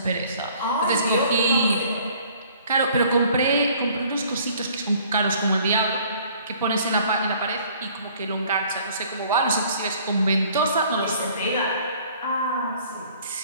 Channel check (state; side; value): inverted; both; correlation -0.56